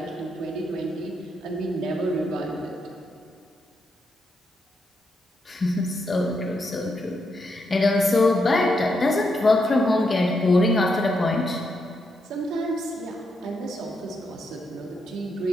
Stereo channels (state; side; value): normal; both; correlation 0.81